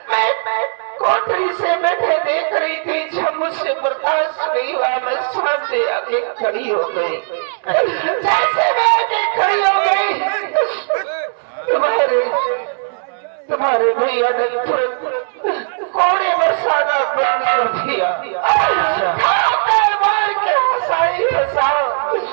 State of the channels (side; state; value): left; silent; digital silence